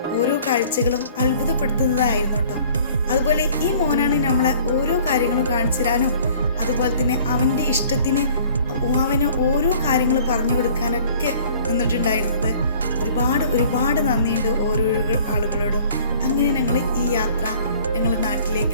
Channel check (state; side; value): inverted; both; correlation -0.51